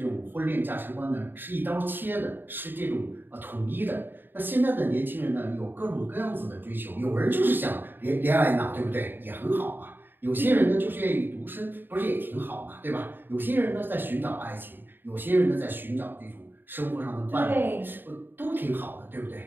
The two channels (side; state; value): left; late; 0.095 ms